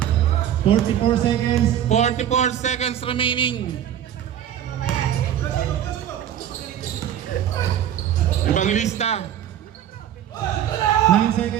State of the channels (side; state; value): left; quieter; 10.5 dB